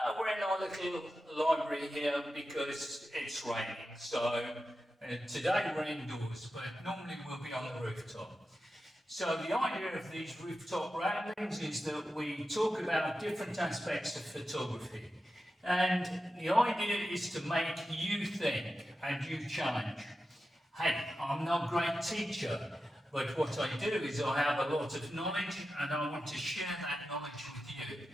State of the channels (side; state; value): both; normal; correlation 0.91